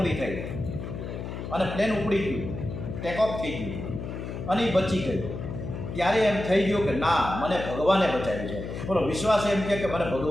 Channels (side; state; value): left; noise; hum, 7 dB below the sound